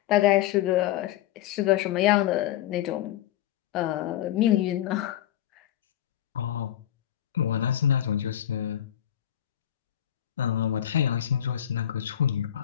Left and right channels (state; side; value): quieter; right; 11.7 dB